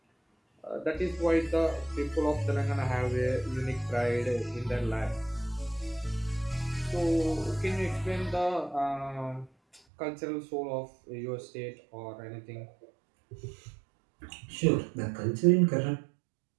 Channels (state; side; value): drops out; left; at 9.8 s